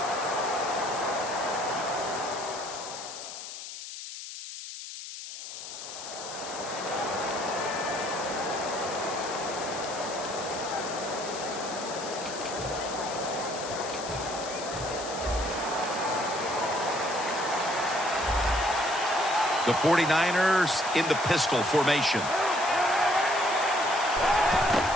The 49ers in the pistol formation.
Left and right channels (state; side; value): noise; left; hiss, 10 dB below the sound